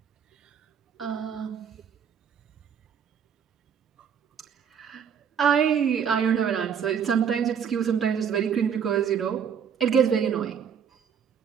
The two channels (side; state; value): left; quieter; 7.6 dB